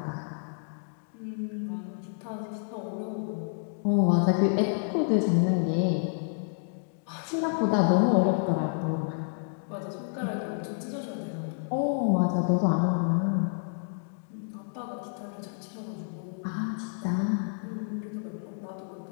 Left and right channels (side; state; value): right; silent; digital silence